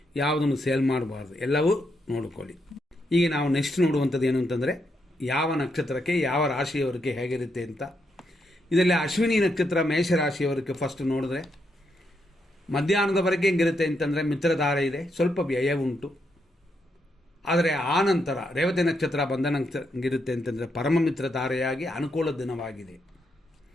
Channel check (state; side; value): normal; both; correlation 0.80